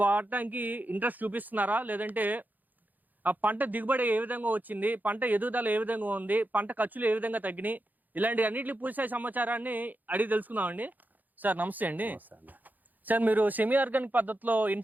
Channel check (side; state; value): left; late; 0.084 ms